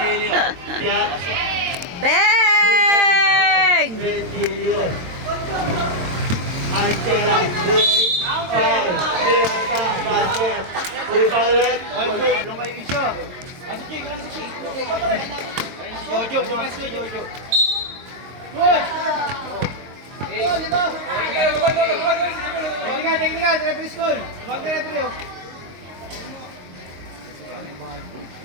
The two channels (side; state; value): left; late; 22 ms